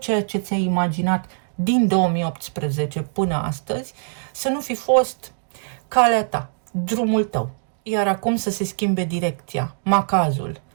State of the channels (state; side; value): silent; left; digital silence